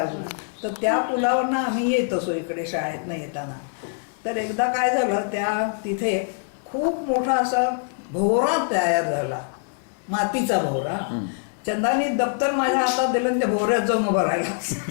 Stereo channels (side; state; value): right; silent; digital silence